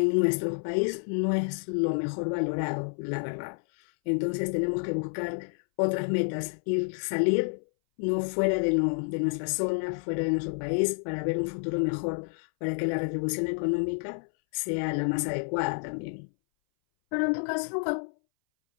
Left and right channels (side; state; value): right; silent; 59 dB below the other